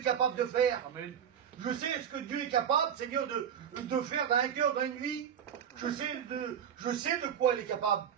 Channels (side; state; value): left; quieter; 8.5 dB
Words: capable de faire. Amen. Je sais ce que Dieu est capable, Seigneur, de faire dans un cœur, dans une vie. Je sais de quoi il est capable.